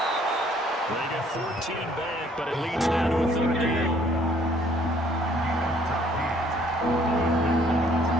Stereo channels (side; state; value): both; normal; correlation 0.62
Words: They get 14 back, but it leads now to a third down.